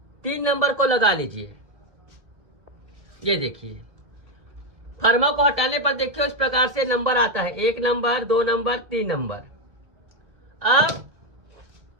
3 नंबर को लगा लीजिए। ये देखिए फर्मा को हटाने पर देखिए इस प्रकार से नंबर आता है, 1 नंबर 2 नंबर 3 नंबर। अब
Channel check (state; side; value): late; left; 1.9 ms